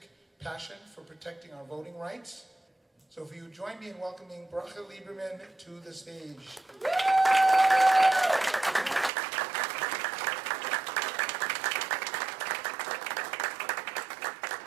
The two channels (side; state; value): left; drops out; at 9.1 s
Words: passion for protecting our voting rights. So if you join me in welcoming Bracha Lieberman to the stage.